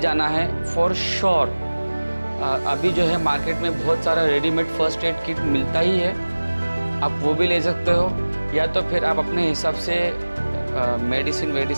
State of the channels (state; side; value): inverted; both; correlation -1.00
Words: है फॉर श्योर। अभी जो है मार्केट में बहुत सारा रेडीमेड फर्स्ट एड किट मिलता ही है, आप वो भी ले सकते हो, या तो फिर आप अपने हिसाब से